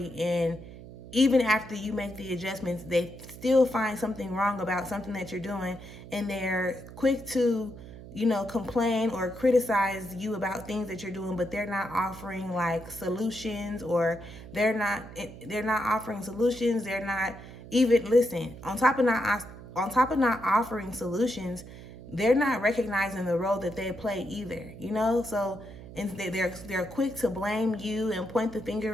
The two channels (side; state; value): right; noise; hum, 15 dB below the sound